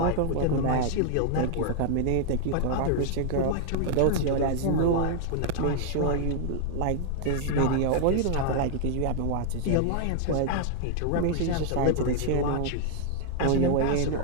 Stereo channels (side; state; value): both; different; correlation 0.00